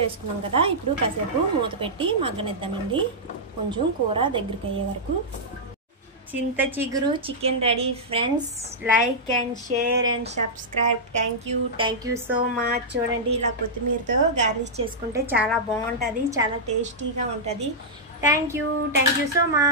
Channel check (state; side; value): normal; both; correlation -0.10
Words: వేసుకున్నాం కదా. ఇప్పుడు కాసేపు మూత పెట్టి మగ్గనిద్దామండి. కొంచెం కూర దగ్గరికి అయ్యే వరకు. చింత చిగురు chicken ready friends. Like and share and subscribe. Thank you so much. చూడండి, ఇలా కొత్తిమీరతో గార్నిష్ చేసుకుంటే చాలా బాగుంటుంది, చాలా టేస్టీగా ఉంటుంది. Thank you so